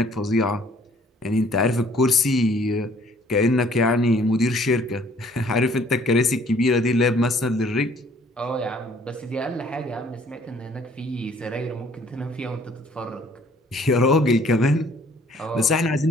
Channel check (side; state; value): both; normal; correlation 0.58